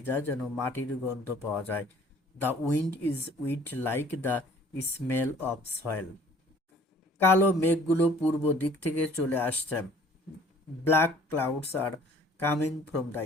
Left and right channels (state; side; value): normal; both; correlation 0.54